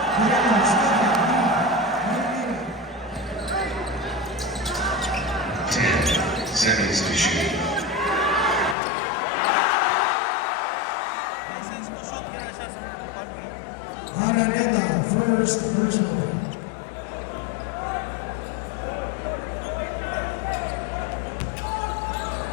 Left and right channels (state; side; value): drops out; right; at 8.8 s